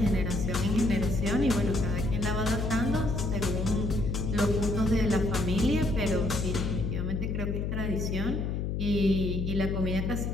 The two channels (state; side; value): noise; left; hum, 1 dB below the sound